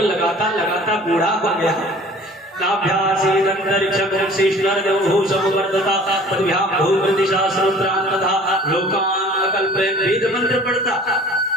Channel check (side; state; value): both; normal; correlation 0.48